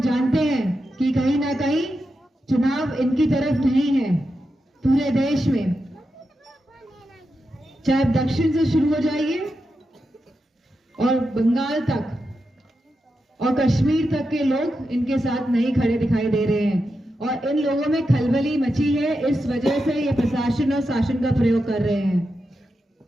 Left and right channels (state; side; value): normal; both; correlation 0.88